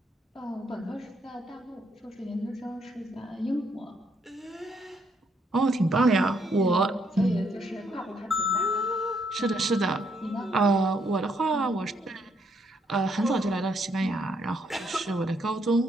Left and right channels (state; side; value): normal; both; correlation 0.73